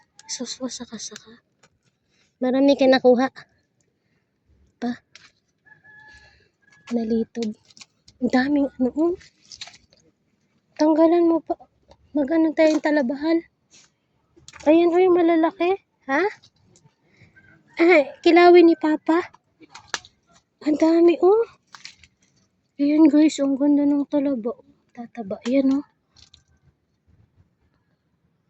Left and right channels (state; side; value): identical; both; correlation 1.00